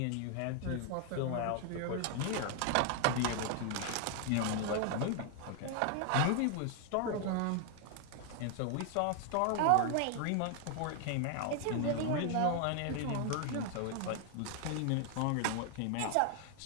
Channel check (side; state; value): both; different; correlation 0.00